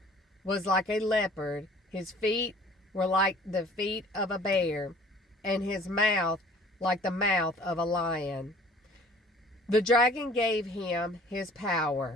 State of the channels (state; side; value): normal; both; correlation 0.52